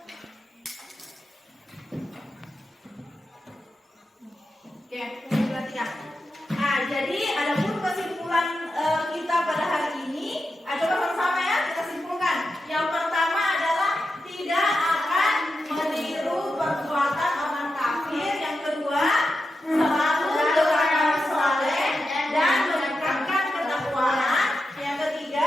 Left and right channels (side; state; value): both; normal; correlation 0.89